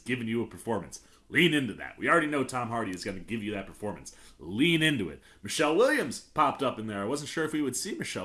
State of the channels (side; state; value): both; identical; correlation 1.00